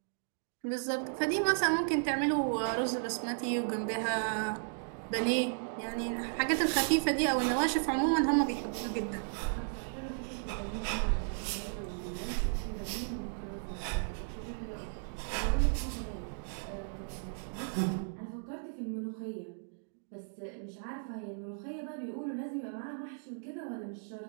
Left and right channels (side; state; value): left; silent; digital silence